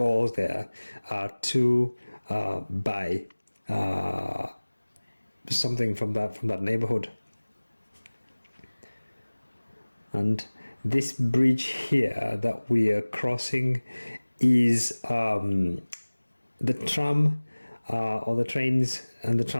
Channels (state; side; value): inverted; both; correlation -1.00